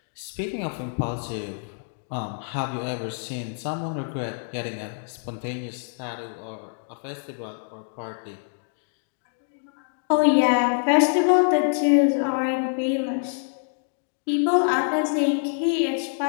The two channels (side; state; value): right; silent; 61 dB below the other